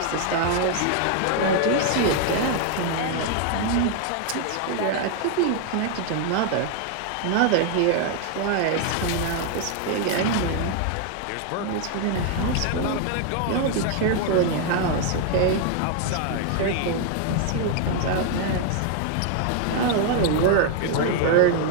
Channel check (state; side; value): different; both; correlation 0.00